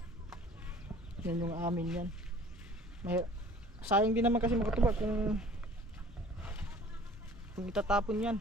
Yan yung amin yan. Sayang din naman kasi makatuba kung itatapon yan.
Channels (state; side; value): normal; both; correlation 0.49